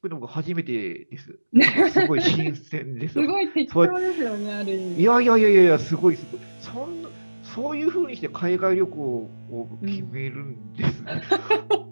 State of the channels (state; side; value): inverted; both; correlation -1.00